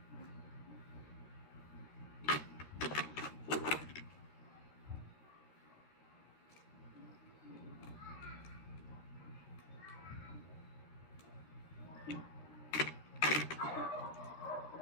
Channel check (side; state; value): right; late; 13 ms